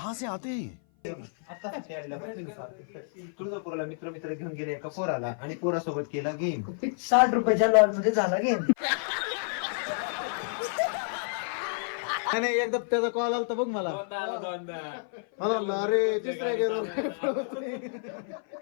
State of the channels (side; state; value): right; silent; 55 dB below the other